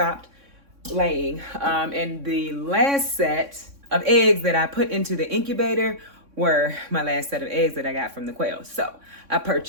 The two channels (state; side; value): late; left; 3.6 ms